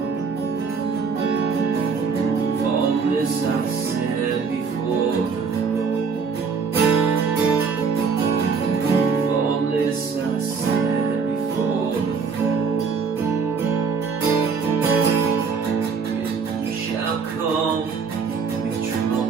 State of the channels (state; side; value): quieter; left; 5.5 dB